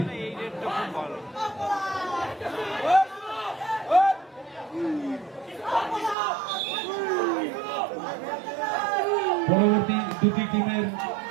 পরবর্তী দুটি টিমের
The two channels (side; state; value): left; drops out; at 6.2 s